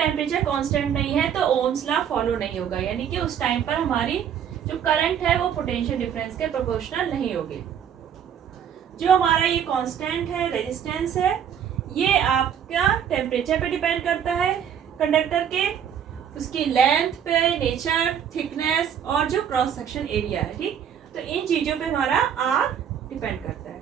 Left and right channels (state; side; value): quieter; left; 8.7 dB